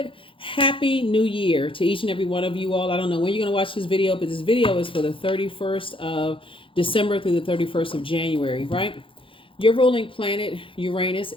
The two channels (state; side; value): late; right; 0.25 ms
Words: Happy New Year to each and every one of you all. I don't know when you're going to watch this video, but this video is for the 31st of December through the 31st of January, right? Your ruling planet, Uranus,